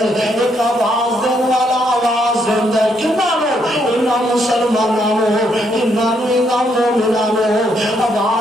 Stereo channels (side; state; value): both; normal; correlation 0.74